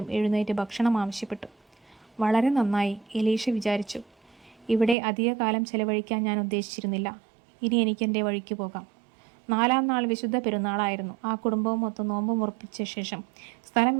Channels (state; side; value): drops out; left; at 5.0 s